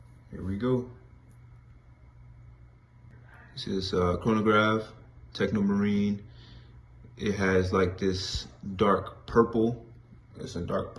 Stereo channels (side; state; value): both; identical; correlation 1.00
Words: Here we go. This is chronograph, Techno Marine. It has like this dark purple. It's a dark